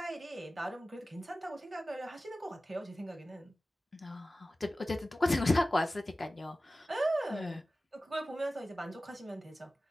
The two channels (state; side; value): normal; both; correlation 0.96